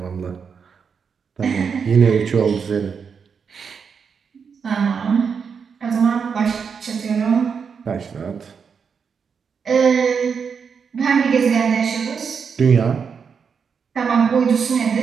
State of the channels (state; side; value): quieter; left; 6.3 dB